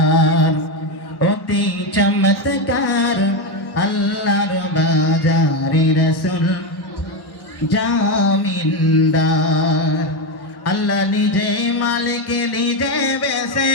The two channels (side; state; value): right; late; 1.1 ms